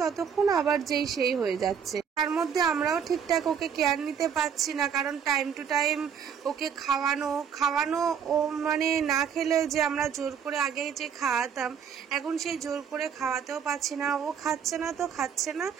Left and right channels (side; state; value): left; quieter; 7.6 dB